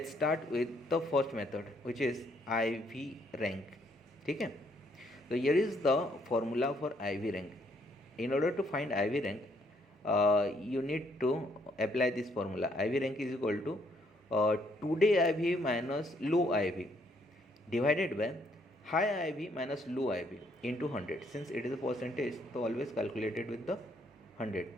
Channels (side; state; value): both; normal; correlation 0.69